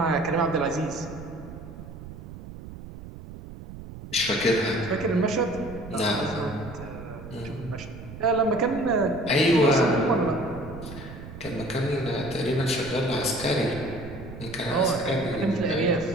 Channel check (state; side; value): noise; right; rumble, 13 dB below the sound